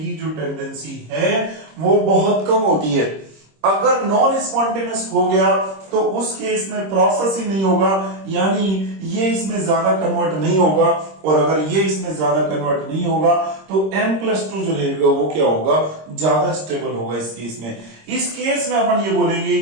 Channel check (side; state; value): left; late; 26 ms